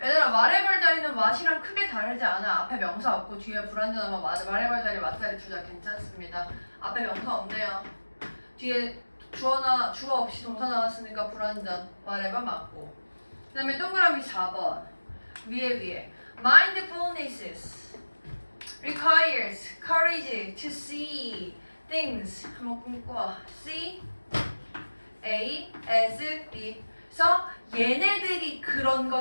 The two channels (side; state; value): both; inverted; correlation -1.00